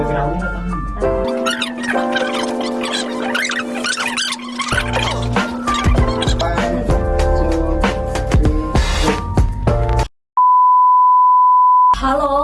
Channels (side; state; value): both; identical; correlation 1.00